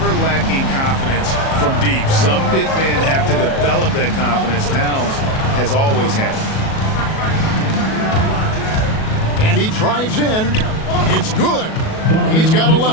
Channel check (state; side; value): late; right; 37 ms